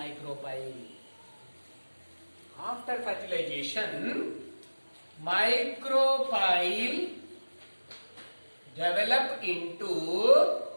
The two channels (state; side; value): inverted; both; correlation -1.00